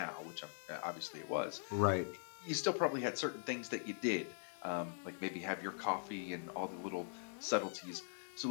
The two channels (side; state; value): right; silent; digital silence